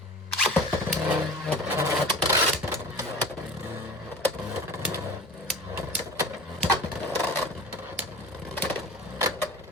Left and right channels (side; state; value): both; normal; correlation 0.37